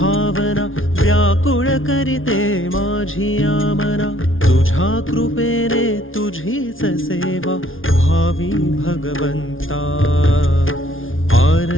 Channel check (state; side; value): late; right; 0.58 ms